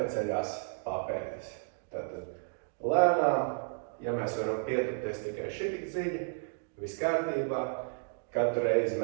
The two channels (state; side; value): silent; left; digital silence